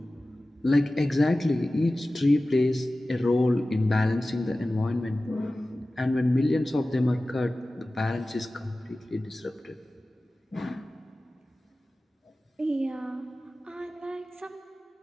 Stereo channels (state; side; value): normal; both; correlation 0.96